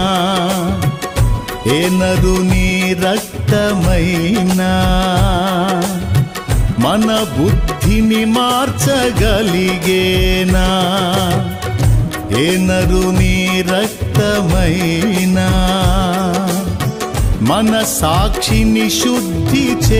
ఏ నరుని రక్తమైనా మన బుద్ధిని మార్చగలిగేనా, ఏ నరుని రక్తమైనా మన సాక్షిని శుద్ధి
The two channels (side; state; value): both; identical; correlation 1.00